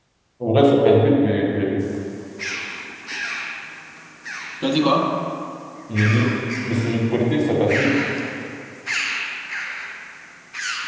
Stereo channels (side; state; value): both; identical; correlation 1.00